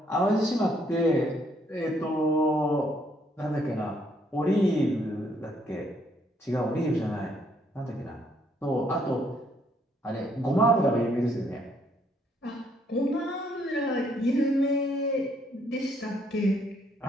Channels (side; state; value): both; normal; correlation 0.69